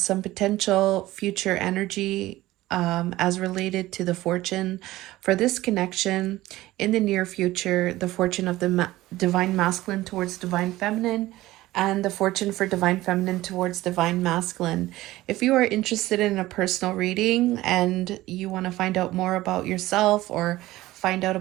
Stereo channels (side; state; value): left; quieter; 17.0 dB